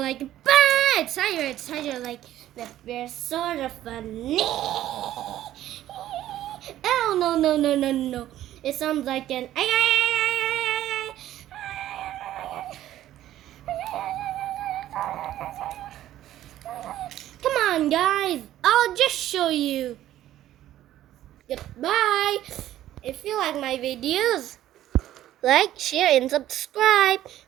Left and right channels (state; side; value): quieter; left; 13.1 dB